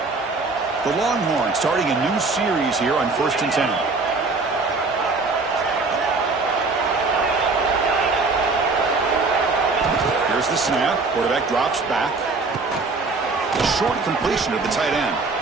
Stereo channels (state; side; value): quieter; left; 3.9 dB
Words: The Longhorns starting a new series here on 1st and 10. Here's the snap. Quarterback drops back. A short completion of the tight end.